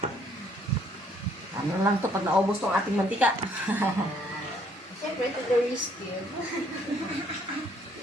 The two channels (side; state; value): both; normal; correlation 0.65